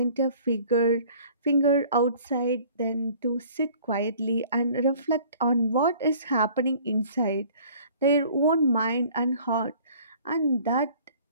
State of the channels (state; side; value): inverted; both; correlation -0.52